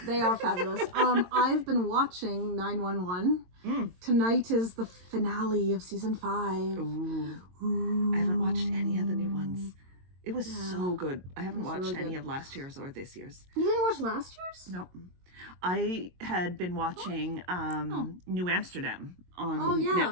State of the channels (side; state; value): left; late; 22 ms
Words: They are fabulous. I've been watching 911. Tonight is the finale of season 5. Ooh. I haven't watched any of the new ones. It was so good. I haven't watched really any of last year's or this year's. You didn't watch last year's? Nope. I had been watching New Amsterdam on